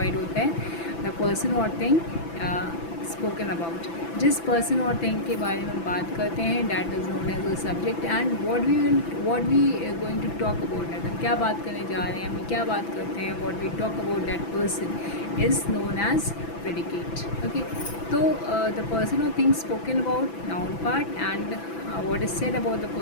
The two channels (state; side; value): late; right; 6.0 ms